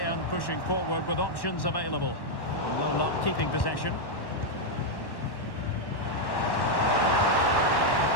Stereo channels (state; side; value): late; right; 1.1 ms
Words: pushing forward with options available. No luck keeping possession.